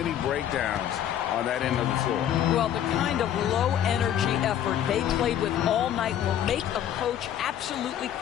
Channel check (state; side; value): quieter; right; 10.5 dB